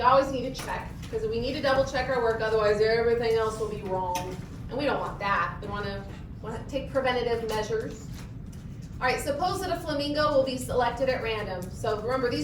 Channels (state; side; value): identical; both; correlation 1.00